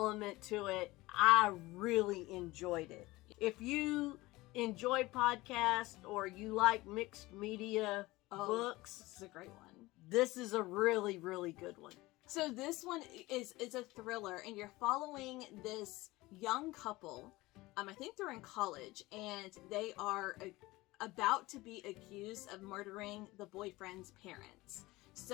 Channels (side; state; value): right; quieter; 20.0 dB